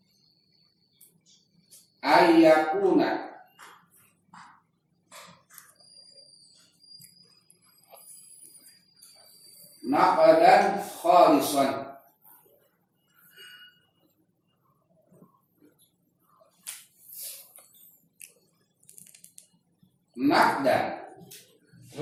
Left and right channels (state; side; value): identical; both; correlation 1.00